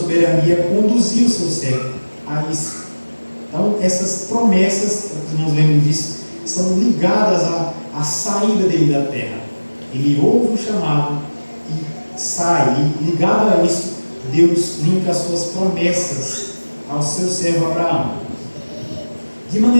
conduziu o seu servo a isso. Então, essas promessas, os irmãos lembram disso, são ligadas à saída dele da terra. Ele ouve o chamado e sai. E ligado a isso, Deus linka as suas promessas ao seu servo Abraão. De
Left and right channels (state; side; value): inverted; both; correlation -1.00